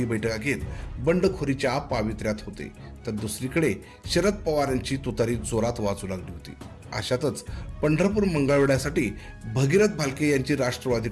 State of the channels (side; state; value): both; identical; correlation 1.00